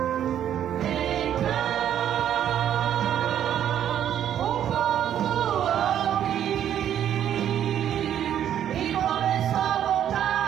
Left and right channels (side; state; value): left; quieter; 10.2 dB